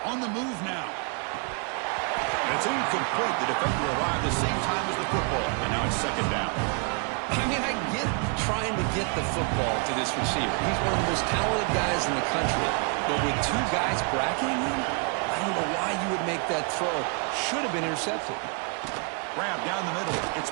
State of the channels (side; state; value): left; quieter; 37.2 dB